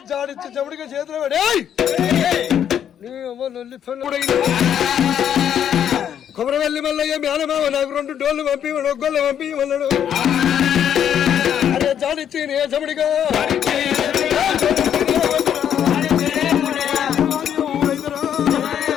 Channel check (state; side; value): quieter; right; 9.3 dB